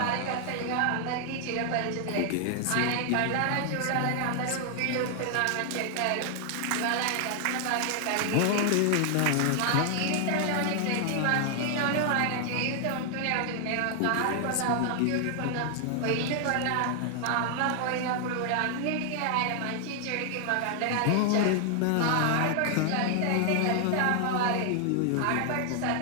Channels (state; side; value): different; both; correlation 0.00